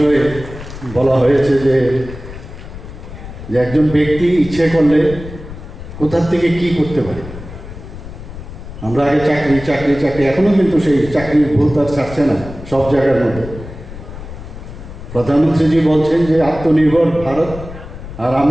বলা হয়েছে যে একজন ব্যক্তি ইচ্ছে করলে কোথা থেকে কি করতে পারে। আমরা আগে চাকরি এখনো কিন্তু সেই চাকরির ভুল তার ছাড়ছে না সব জায়গার মধ্যে। প্রধানমন্ত্রীজি বলছেন যে আত্মনির্ভর ভারত, আর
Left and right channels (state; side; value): noise; left; rumble, 13 dB below the sound